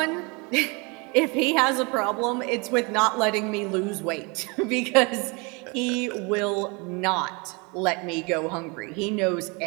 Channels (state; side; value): quieter; left; 29.4 dB